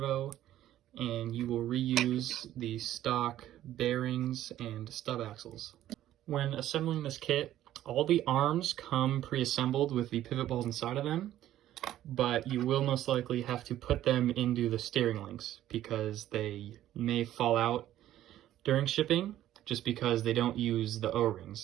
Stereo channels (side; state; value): left; quieter; 12.9 dB